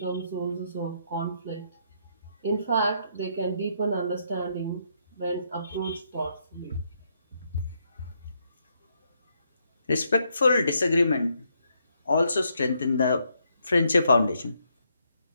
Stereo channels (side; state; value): both; inverted; correlation -0.75